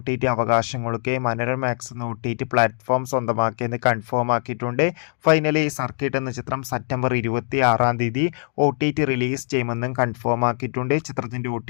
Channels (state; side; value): silent; right; digital silence